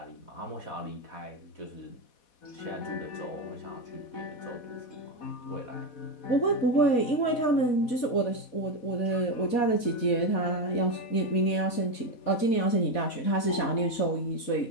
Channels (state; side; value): late; right; 4.1 ms